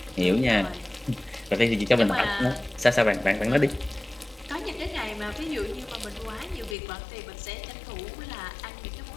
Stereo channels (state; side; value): drops out; right; at 6.8 s